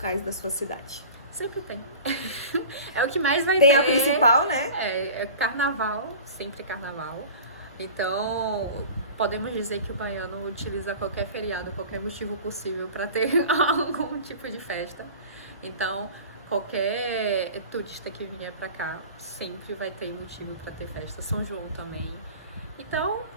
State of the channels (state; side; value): inverted; both; correlation -0.39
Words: da sua cidade. Sempre tem. É o que mais vai ter. Tem a principal, né? É carnaval, sempre carnaval. Então, podemos dizer que o baiano utiliza qualquer feriado, qualquer motivo possível para ter algum tipo de festa. Então, qualquer turista que vier para cá sempre vai ter motivo para ter festa. São João também. Então,